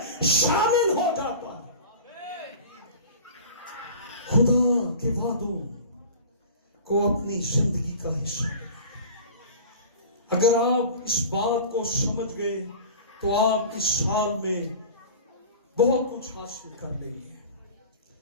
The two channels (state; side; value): inverted; both; correlation -0.39